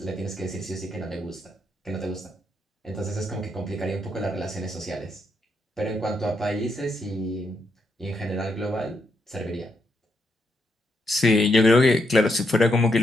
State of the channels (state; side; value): normal; both; correlation 0.79